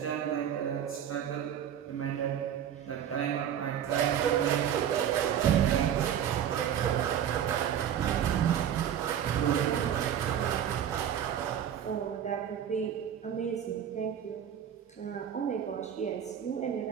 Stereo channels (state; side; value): quieter; left; 9.5 dB